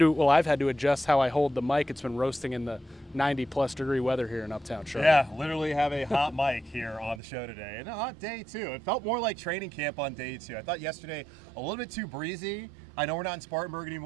had to adjust how I hold the mic. It's been roasting in the 90-plus degree weather here in Uptown Charlotte. Yeah, literally have a hot mic here on the show today. And a hot day, too. It felt more like training camp on day 2. I thought yesterday a little bit too breezy. I know we're not in Spartanburg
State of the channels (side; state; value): left; drops out; at 7.2 s